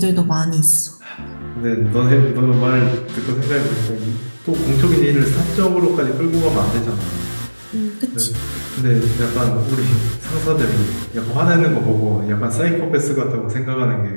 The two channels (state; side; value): inverted; both; correlation -1.00